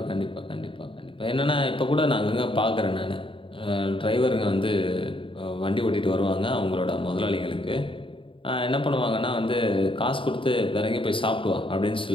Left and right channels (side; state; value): right; late; 0.25 ms